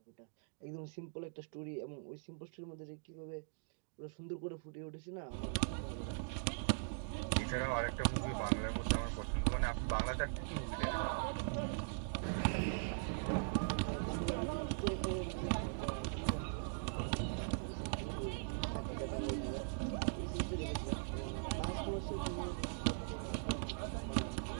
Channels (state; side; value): silent; left; digital silence